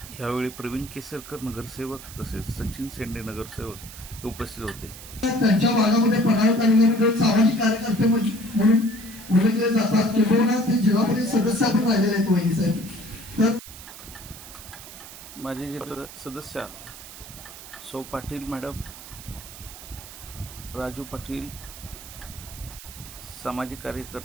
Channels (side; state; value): right; noise; hiss, 15 dB below the sound